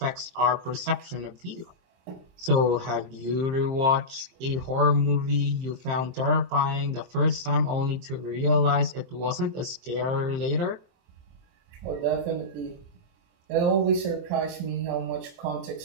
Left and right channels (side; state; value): left; late; 23 ms